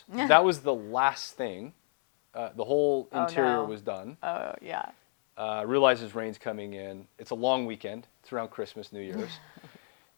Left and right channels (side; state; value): right; silent; digital silence